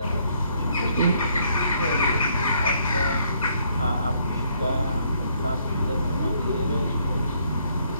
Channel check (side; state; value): both; inverted; correlation -0.69